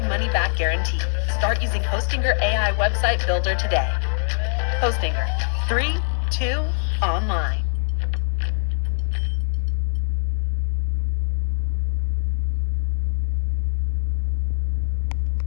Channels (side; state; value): right; silent; digital silence